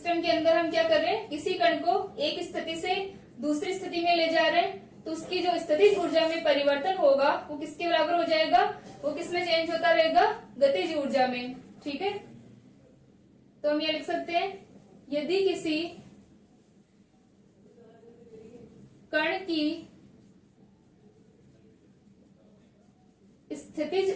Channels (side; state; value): both; identical; correlation 1.00